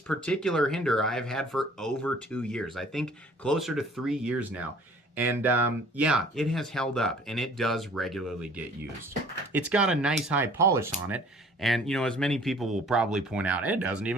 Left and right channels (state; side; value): normal; both; correlation 0.52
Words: particular Hinderer I've had for over 2 years. I think closer to 3 years now. And yeah, it has held up, and it does regularly get used. It's got a nice high polish on it, and you know, as many people will probably point out, it doesn't